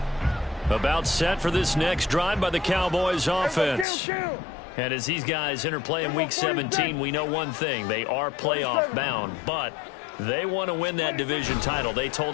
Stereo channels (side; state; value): right; drops out; at 3.9 s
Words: About set for this next drive by the Cowboys offense. And as these guys interplay in Week 17, we know one thing. They are playoff bound, but they want to win that division title. They